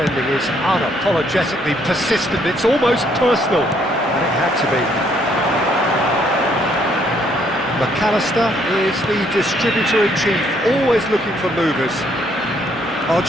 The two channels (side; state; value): both; normal; correlation 0.68